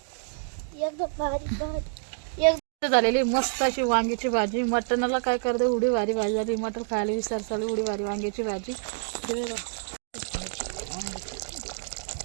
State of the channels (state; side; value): silent; left; digital silence